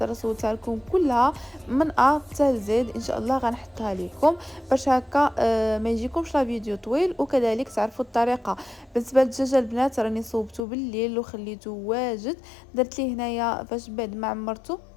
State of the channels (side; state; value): right; drops out; at 10.6 s